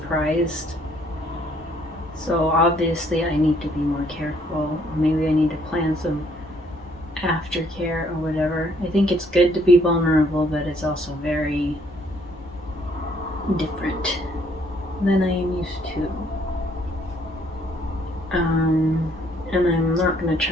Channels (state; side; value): normal; both; correlation 0.65